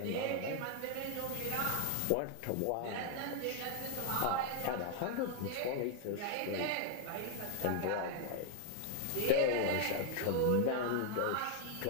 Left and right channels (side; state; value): both; different; correlation 0.00